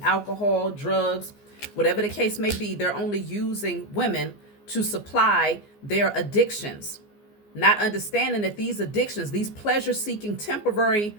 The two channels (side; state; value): right; late; 14 ms